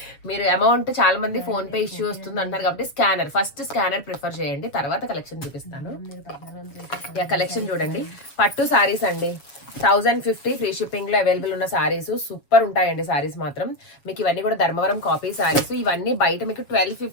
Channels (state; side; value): late; right; 7.2 ms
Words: మీరు అమౌంట్ చాలా మంది ఫోన్ పే ఇష్యూ వస్తుంది అంటారు కాబట్టి ఫస్ట్ స్కానర్ ప్రిఫర్ చేయండి, తర్వాత కలెక్షన్ చూపిస్తాను. కలెక్షన్ చూడండి, పట్టు సారీస్ అండి. 1050 ఫ్రీ షిప్పింగ్ లో అవైలబుల్ ఉన్న సారీస్ సూపర్ ఉంటాయండి. సారీస్ మాత్రం మీకు ఇవన్నీ కూడా ధర్మవరం కాపీ సారీస్. ఇవన్నీ బయట మీకు